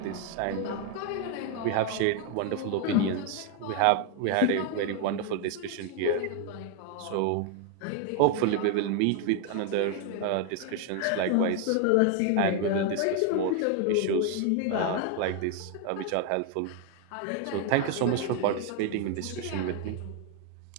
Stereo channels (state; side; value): different; both; correlation 0.01